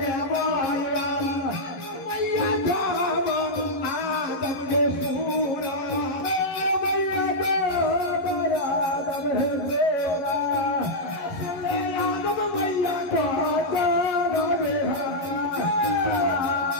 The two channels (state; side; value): late; right; 11 ms